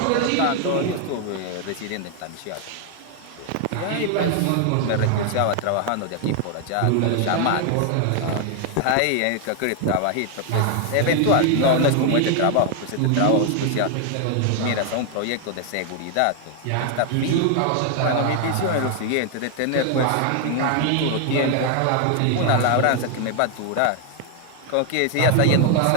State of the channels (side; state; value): both; different; correlation 0.00